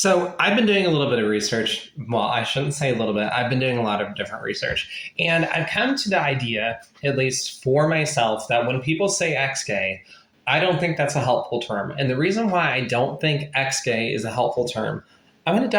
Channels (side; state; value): both; identical; correlation 1.00